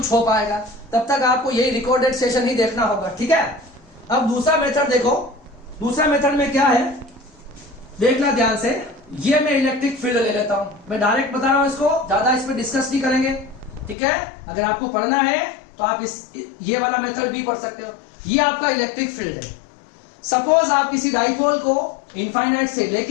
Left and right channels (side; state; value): right; drops out; at 14.0 s